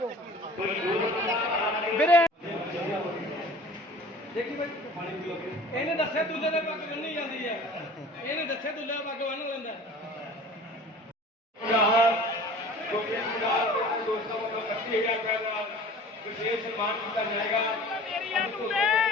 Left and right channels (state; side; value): normal; both; correlation 0.44